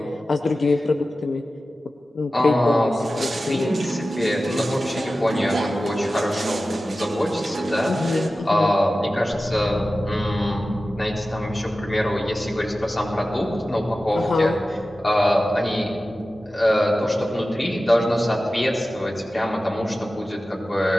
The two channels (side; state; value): both; normal; correlation 0.95